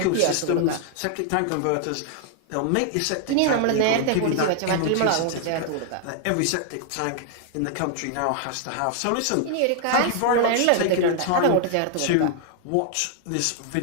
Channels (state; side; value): different; both; correlation 0.00